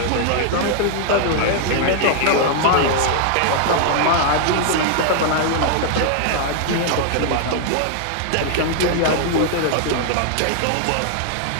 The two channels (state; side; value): different; both; correlation 0.00